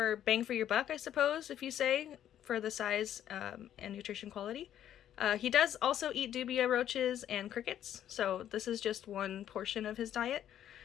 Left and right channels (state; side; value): quieter; right; 10.8 dB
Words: bang for your buck, I suppose, if you say, for the size and nutrition quality. He does also eat dubia roaches and crickets, so this is just one portion of his diet.